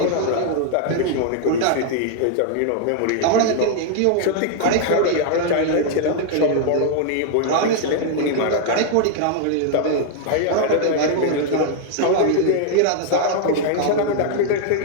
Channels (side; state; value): both; different; correlation 0.00